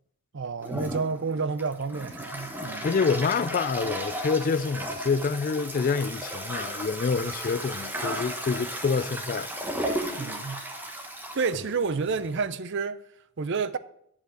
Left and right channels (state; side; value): normal; both; correlation 0.17